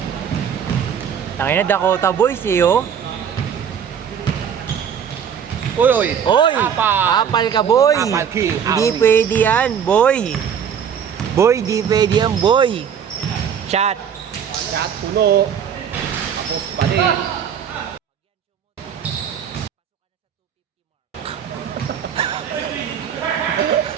Tangina Dakota Boys eh oh. Uy. Oy! Apal. Apal ka boy! Apal king. Hindi pwede yan, boy! Boy, di pwede yan, boy! Shot! Shot puno. Tapos balik.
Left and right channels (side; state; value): left; quieter; 7.9 dB